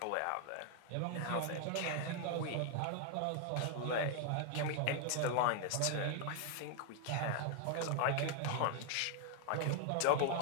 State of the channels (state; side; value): different; both; correlation 0.00